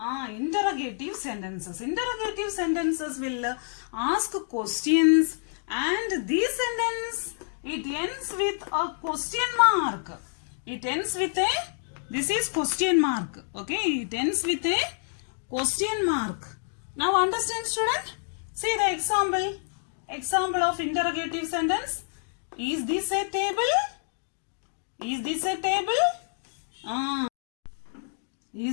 interrogative sentences. Interrogative sentences will ask questions, and this sentence, it ends with a question mark. It ends with a This is question mark. Okay, it ends with a question mark. Now understand, student? See the example. Example of interrogative sentence. Is this a table? Is this a table?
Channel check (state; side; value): silent; right; digital silence